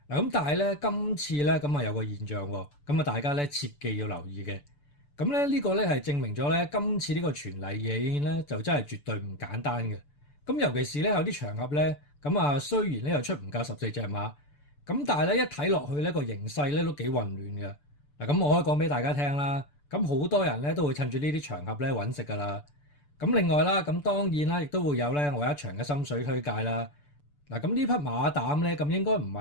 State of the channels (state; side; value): late; right; 6.9 ms